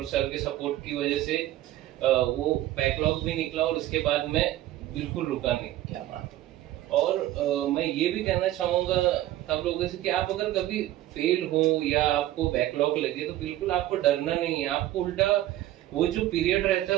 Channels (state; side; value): quieter; left; 14.4 dB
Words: सर के सपोर्ट की वजह से वो बैकलॉग भी निकला और उसके बाद मैं बिल्कुल रुका नहीं। क्या बात। और मैं ये भी कहना चाहूंगा सब लोगों से कि आप अगर कभी फेल हो या आपको बैकलॉग लगे तो बिल्कुल आपको डरना नहीं है। आपको उल्टा वो जो पीरियड रहता है